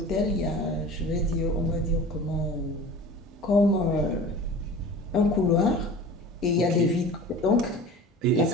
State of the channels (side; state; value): both; normal; correlation 0.39